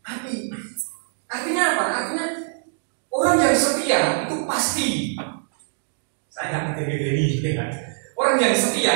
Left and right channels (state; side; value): silent; left; digital silence